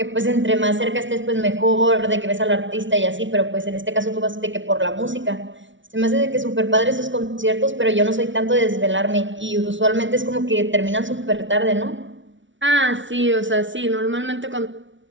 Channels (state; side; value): late; left; 0.56 ms